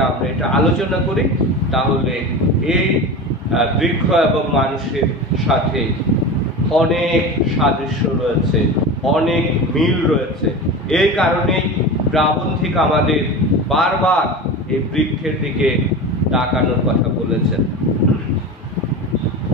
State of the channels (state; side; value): normal; both; correlation 0.28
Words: আমরা এটা আলোচনা করি, তাহলে এই বৃক্ষ এবং মানুষের সাথে অনেক সাদৃশ্য রয়েছে, অনেক মিল রয়েছে। এই কারণেই প্রাবন্ধিক আমাদের বারবার এই বৃক্ষের দিকে তাকানোর কথা বলেছেন।